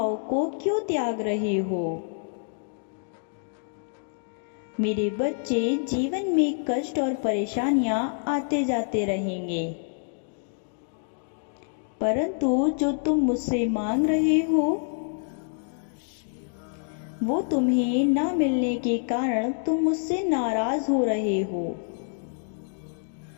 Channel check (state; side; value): silent; right; digital silence